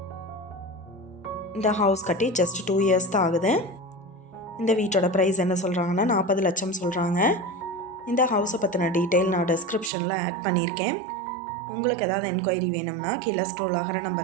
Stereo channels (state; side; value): drops out; left; at 9.9 s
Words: இந்த ஹவுஸ் கட்டி ஜஸ்ட் 2 இயர்ஸ் தான் ஆகுது. இந்த வீட்டோட ப்ரைஸ் என்ன சொல்கிறாங்கன்னா 40 லட்சம் சொல்கிறாங்க. இந்த ஹவுஸை பற்றின டீட்டெயில் நான் டிஸ்கிரிப்ஷனில் ஆட் பண்ணியிருக்கேன். உங்களுக்கு ஏதாவது என்கொயரி வேணும்னா கீழே ஸ்க்ரோல் ஆகிற